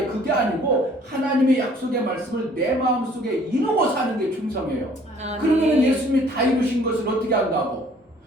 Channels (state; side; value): normal; both; correlation 0.57